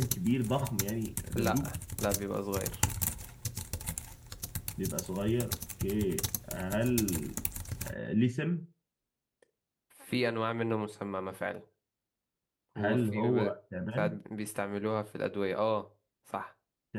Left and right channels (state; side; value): identical; both; correlation 1.00